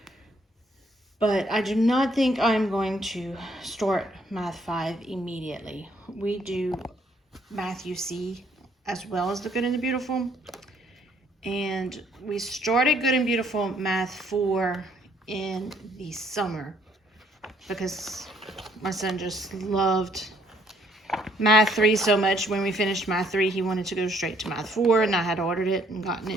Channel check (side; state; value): both; normal; correlation 0.67